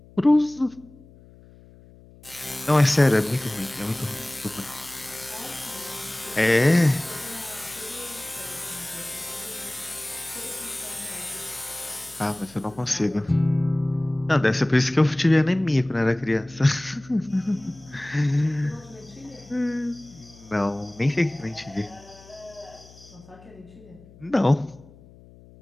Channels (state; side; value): noise; left; hum, 23 dB below the sound